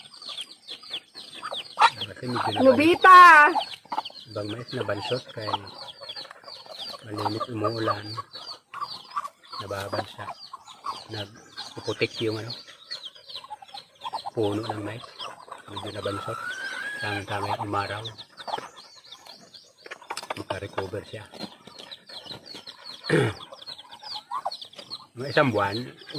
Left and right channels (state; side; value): identical; both; correlation 1.00